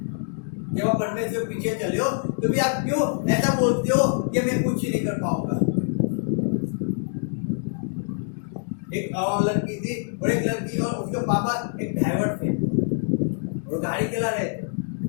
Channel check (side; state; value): right; silent; digital silence